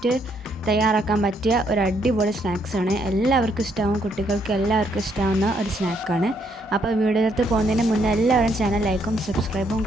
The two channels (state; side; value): normal; both; correlation 0.72